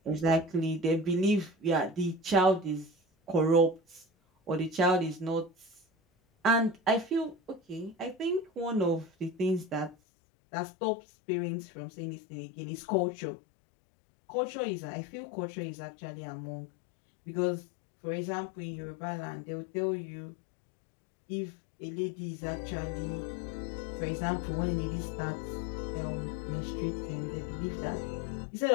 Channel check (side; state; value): right; drops out; at 10.0 s